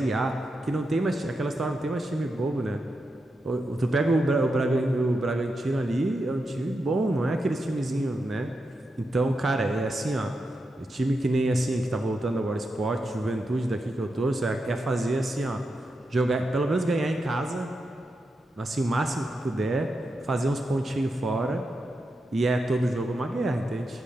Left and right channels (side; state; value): both; normal; correlation 0.87